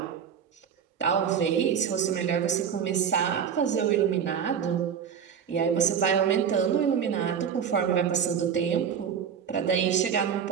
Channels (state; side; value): quieter; left; 7.8 dB